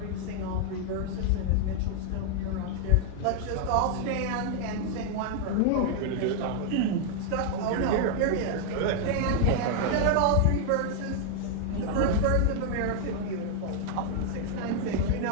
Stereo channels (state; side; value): different; both; correlation 0.00